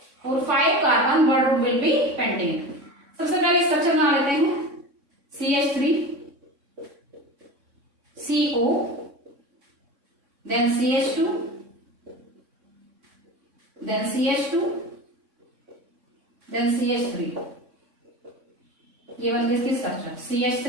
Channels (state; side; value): late; left; 3.6 ms